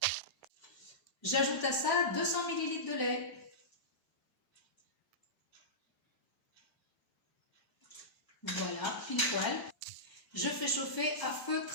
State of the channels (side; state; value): both; normal; correlation -0.16